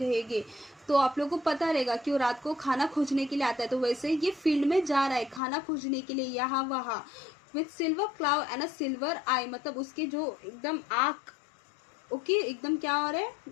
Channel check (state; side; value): drops out; right; at 5.4 s